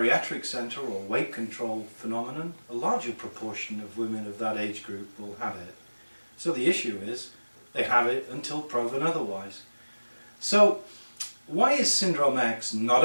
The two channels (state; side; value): inverted; both; correlation -1.00